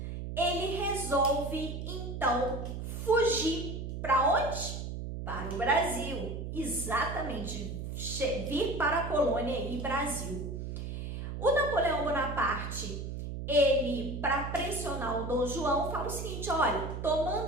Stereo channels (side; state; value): right; noise; hum, 6 dB below the sound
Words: ele resolve então fugir para onde? Para o Brasil, exatamente, vir para a colônia e Brasil. O Napoleão Bonaparte, ele, para pressionar o Dom João, fala o seguinte: olha, tô